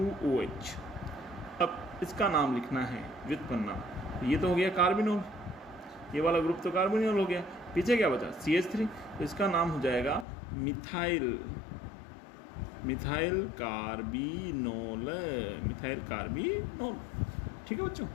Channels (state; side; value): drops out; right; at 10.2 s